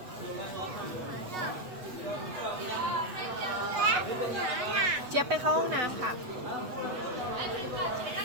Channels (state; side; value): late; left; 8.2 ms